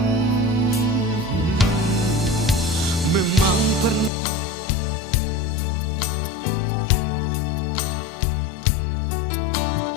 Memang pernah katong bina,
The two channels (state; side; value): drops out; right; at 4.1 s